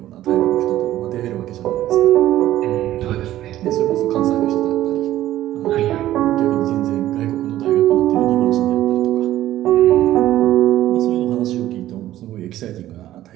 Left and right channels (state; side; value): quieter; left; 13.9 dB